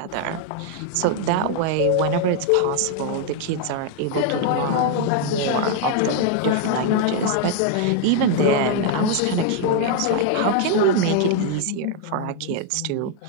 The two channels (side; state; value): both; different; correlation 0.00